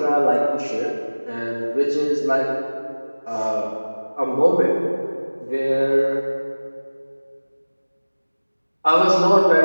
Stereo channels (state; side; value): inverted; both; correlation -1.00